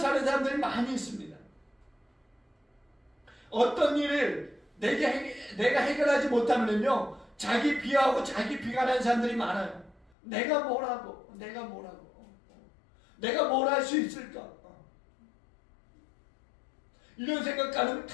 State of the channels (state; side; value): drops out; right; at 10.1 s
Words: 사람들이 많이 있습니다. 어떤 일을 내가 해결하지 못하면요, 자기 비하하고 자기 비관하는 사람들이 많아요. 내가 뭘 할 수 있을까? 이런 생각